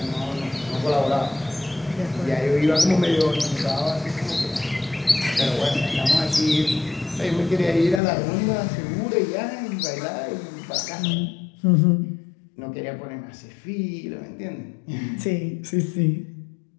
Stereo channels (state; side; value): drops out; right; at 8.0 s